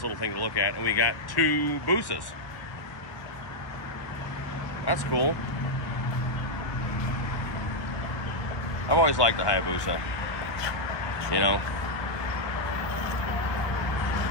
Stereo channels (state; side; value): late; right; 1.2 ms